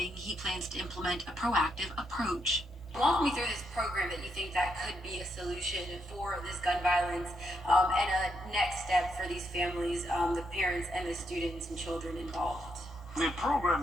he plans to implement a proactive approach. Walk me through this program that you think that could be a solution for this gun violence and a next step for these families, the parents and the students and children involved. The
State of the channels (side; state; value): both; normal; correlation 0.79